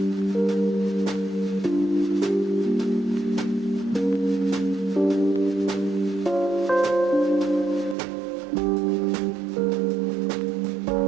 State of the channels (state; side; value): drops out; left; at 8.0 s